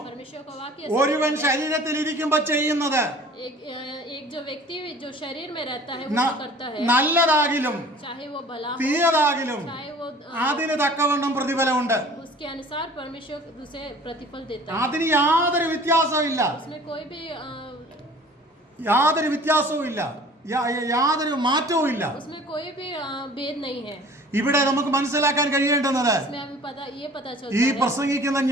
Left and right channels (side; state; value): both; normal; correlation 0.47